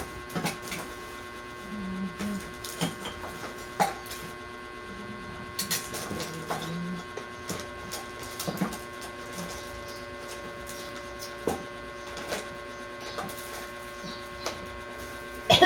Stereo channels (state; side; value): identical; both; correlation 1.00